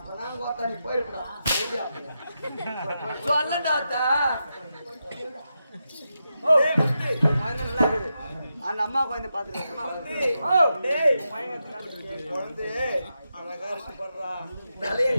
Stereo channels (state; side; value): inverted; both; correlation -0.87